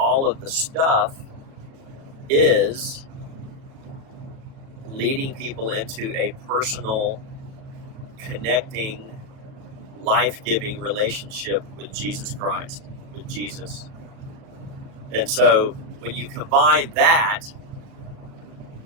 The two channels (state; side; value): late; left; 37 ms